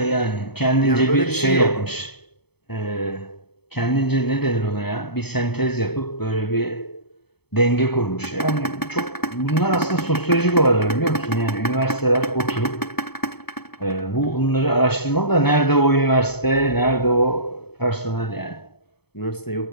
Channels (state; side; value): late; right; 0.97 ms